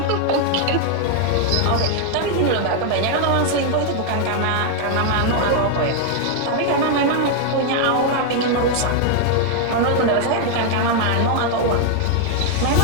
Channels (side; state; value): both; different; correlation 0.00